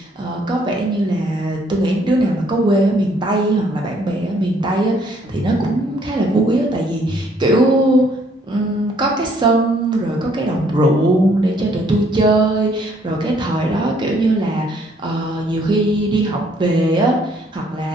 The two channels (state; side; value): normal; both; correlation 0.65